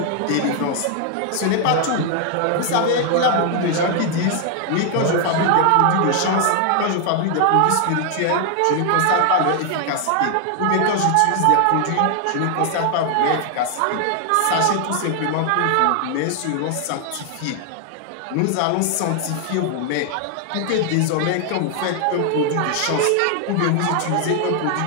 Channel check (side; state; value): both; different; correlation 0.00